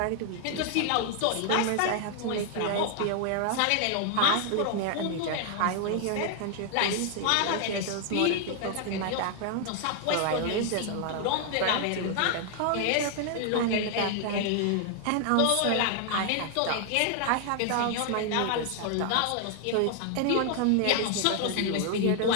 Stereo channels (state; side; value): different; both; correlation 0.00